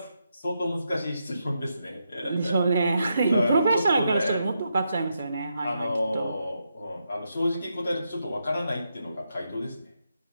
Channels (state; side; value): inverted; both; correlation -0.83